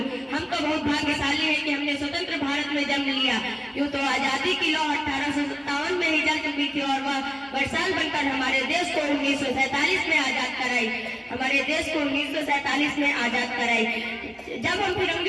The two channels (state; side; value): identical; both; correlation 1.00